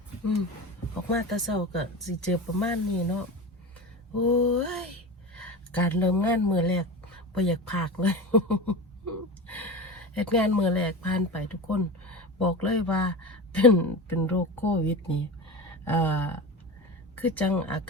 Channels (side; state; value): both; normal; correlation 0.27